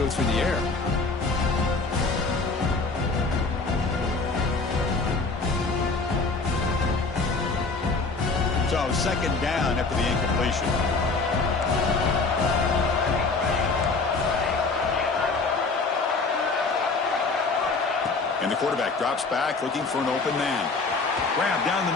through the air. So 2nd down after the incompletion. And the quarterback drops back, looking for an open man. Grab down the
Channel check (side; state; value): right; quieter; 4.0 dB